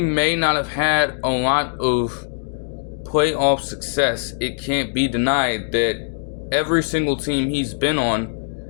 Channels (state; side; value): silent; right; digital silence